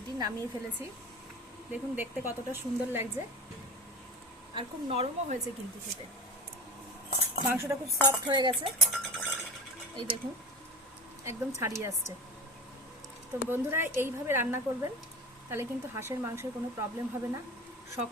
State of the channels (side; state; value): both; normal; correlation 0.29